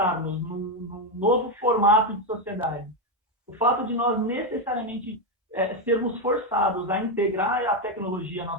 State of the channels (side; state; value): both; normal; correlation 0.07